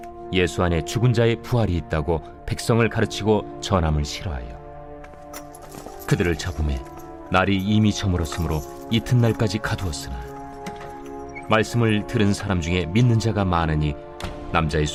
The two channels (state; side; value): identical; both; correlation 1.00